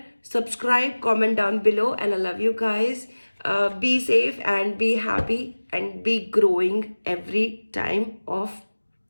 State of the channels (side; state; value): both; inverted; correlation -1.00